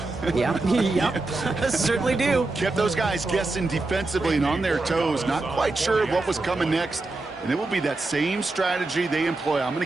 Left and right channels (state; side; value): quieter; left; 3.2 dB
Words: Yep. Certainly do. Kept those guys guessing defensively and on their toes, not quite sure what was coming next. And it will be that same strategy they employ, I'm going